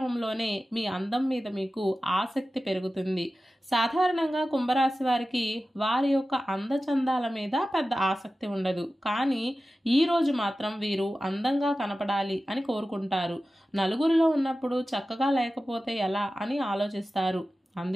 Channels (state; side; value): normal; both; correlation 0.95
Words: మీ అందం మీద మీకు ఆసక్తి పెరుగుతుంది. సాధారణంగా కుంభరాశి వారికి వారి యొక్క అందచందాల మీద పెద్ద ఆసక్తి ఉండదు. కానీ ఈ రోజు మాత్రం వీరు అందంగా కనపడాలి అని కోరుకుంటారు. నలుగురిలో ఉన్నప్పుడు చక్కగా లేకపోతే ఎలా అని ఆలోచిస్తారు.